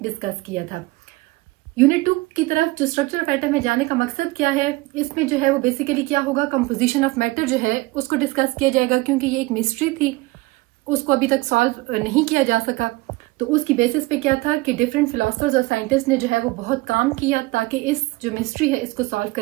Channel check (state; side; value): quieter; left; 21.7 dB